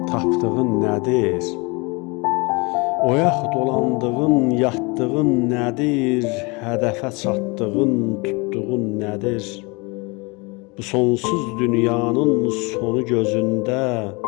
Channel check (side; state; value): right; quieter; 27.8 dB